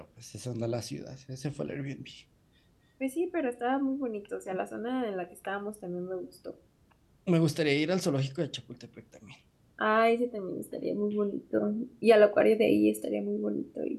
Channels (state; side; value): identical; both; correlation 1.00